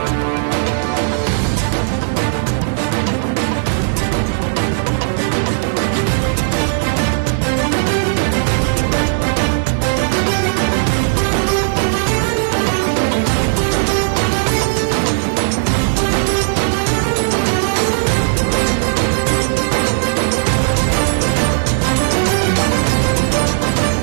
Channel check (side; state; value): left; silent; digital silence